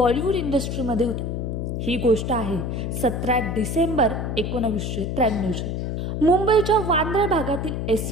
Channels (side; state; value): left; noise; hum, 2 dB below the sound